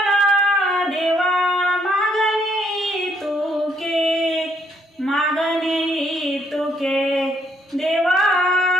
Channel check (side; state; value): both; normal; correlation 0.70